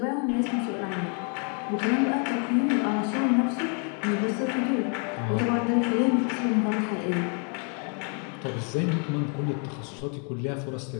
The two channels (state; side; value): quieter; right; 39.8 dB